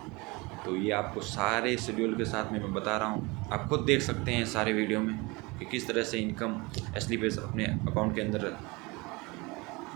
तो ये आपको सारे शेड्यूल के साथ में मैं बता रहा हूँ, आप खुद देख सकते हैं सारे वीडियो में कि किस तरह से इनकम एसली बेस अपने अकाउंट के अंदर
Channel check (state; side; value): quieter; left; 25.3 dB